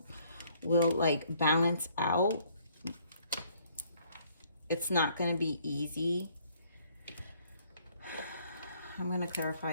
like balance out. It's not going to be easy. I'm going to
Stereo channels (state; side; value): inverted; both; correlation -0.64